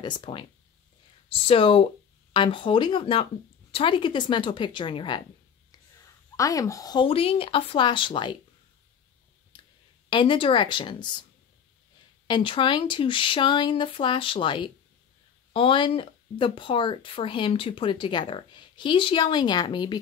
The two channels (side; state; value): right; quieter; 7.5 dB